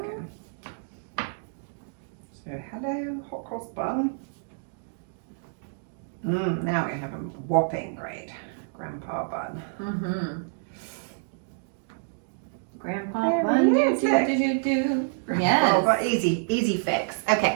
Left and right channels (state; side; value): silent; left; digital silence